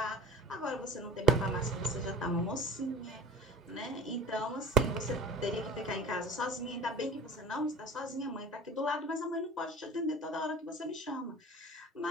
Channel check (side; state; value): both; normal; correlation 0.40